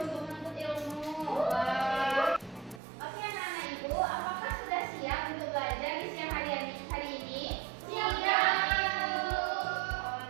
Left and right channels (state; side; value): drops out; left; at 2.8 s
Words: untuk menuntut ilmu. Wah. Oke anak-anak Ibu, apakah sudah siap untuk belajar di siang hari ini? Siap.